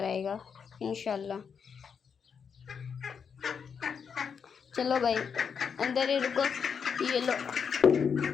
आएगा इंशाल्लाह। चलो भाई अंदर ही रुको, ये लो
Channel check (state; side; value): quieter; right; 6.6 dB